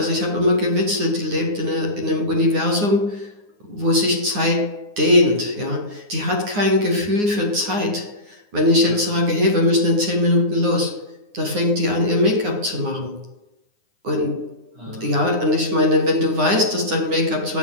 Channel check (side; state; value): left; late; 9.7 ms